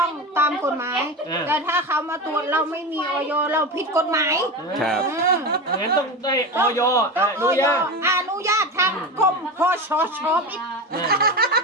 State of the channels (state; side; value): normal; both; correlation 0.23